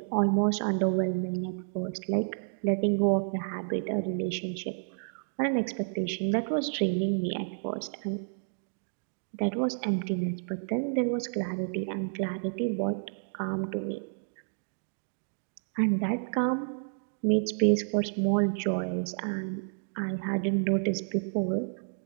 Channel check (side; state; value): left; silent; digital silence